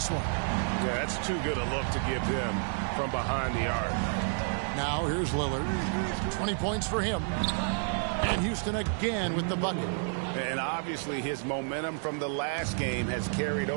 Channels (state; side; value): silent; left; 58 dB below the other